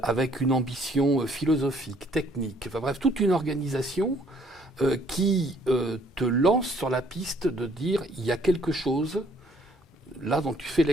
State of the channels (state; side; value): normal; both; correlation 0.62